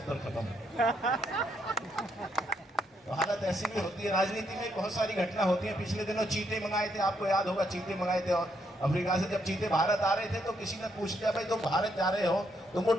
खत्म। तो हालत ऐसी भी होती है। राजनीति में बहुत सारी घटना होती है। पिछले दिनों चीते मंगाए थे, आपको याद होगा, चीते मंगाए थे और अफ्रीका से जब चीते भारत आ रहे थे तो किसी ने पूछ लिया, भाई तुम भारत जा रहे हो, तुमको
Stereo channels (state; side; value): normal; both; correlation 0.75